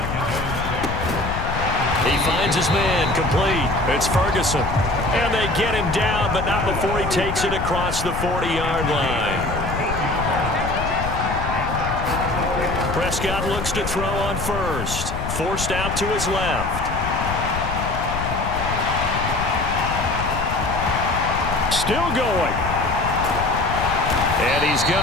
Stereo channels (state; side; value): noise; left; rumble, 5 dB below the sound